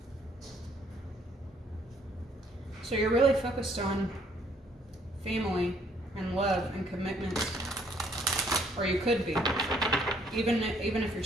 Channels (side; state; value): both; normal; correlation 0.65